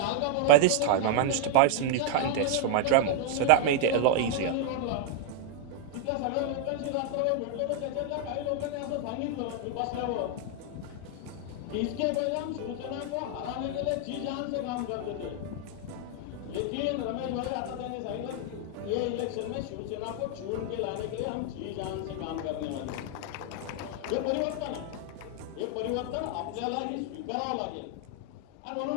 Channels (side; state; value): both; different; correlation 0.00